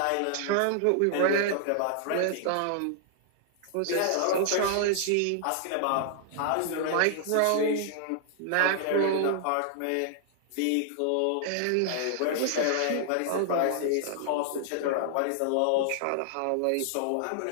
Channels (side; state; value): both; different; correlation 0.00